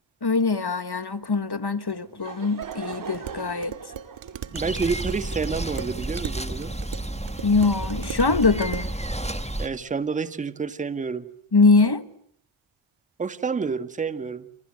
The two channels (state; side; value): normal; both; correlation 0.18